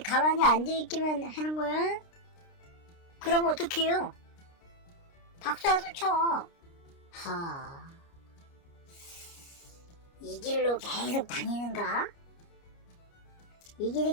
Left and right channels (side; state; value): right; late; 29 ms